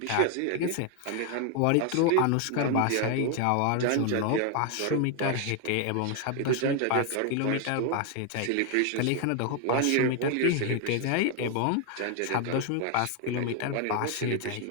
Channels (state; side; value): different; both; correlation 0.01